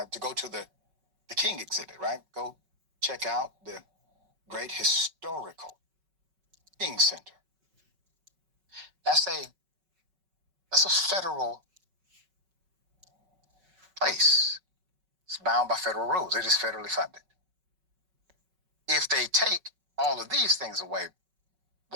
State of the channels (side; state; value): left; late; 5.3 ms